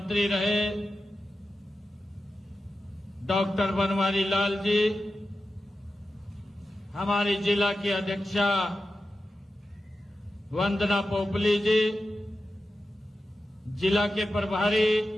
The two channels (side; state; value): both; normal; correlation 0.91